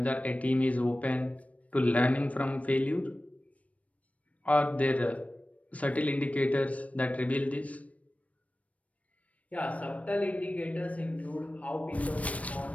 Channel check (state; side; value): late; right; 0.066 ms